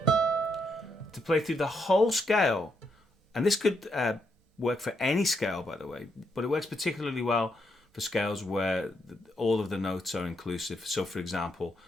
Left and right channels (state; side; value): normal; both; correlation 0.78